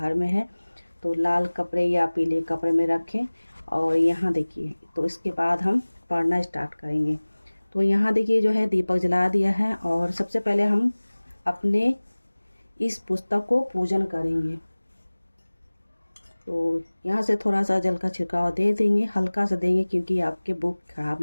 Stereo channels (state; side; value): inverted; both; correlation -1.00